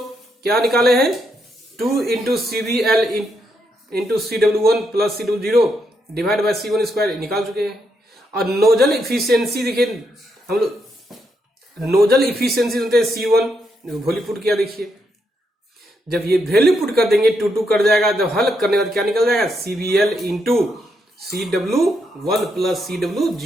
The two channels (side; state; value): both; normal; correlation 0.79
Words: क्या निकाले हैं, 2 into CBL into CW1 plus CW0 divide by C1 square निकाल चुके हैं। और नोजल इफिशियंसी देखिए हम लोग, नोजल इफिशियंसी होते हैं C1, वैल्यू पुट किया, देखिए जब ये वैल्यू पुट कर देंगे 2 कर जाएगा, जब हल करने के बाद क्या निकल जाएगा, CBL into CW1 plus